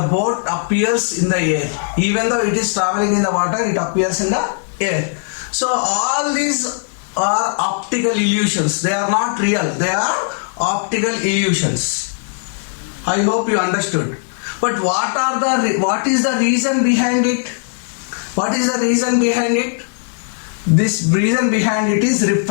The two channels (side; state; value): right; silent; digital silence